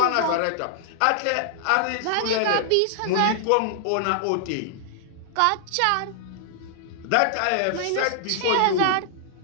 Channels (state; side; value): different; both; correlation -0.01